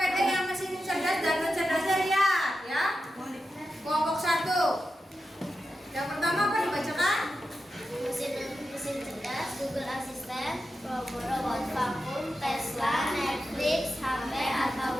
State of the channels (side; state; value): both; normal; correlation 0.90